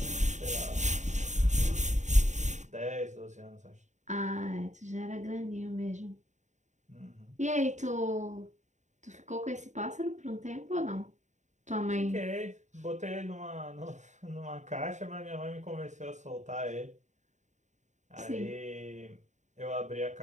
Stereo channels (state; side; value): late; left; 0.34 ms